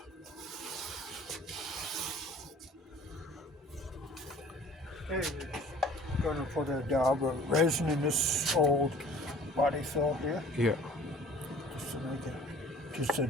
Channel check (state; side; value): normal; both; correlation 0.49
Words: Okay, we're going to put a dab of resin in this old body fill here. Yeah. Just to make it just a